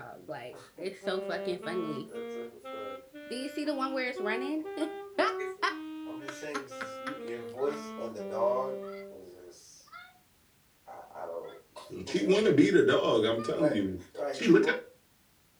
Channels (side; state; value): both; identical; correlation 1.00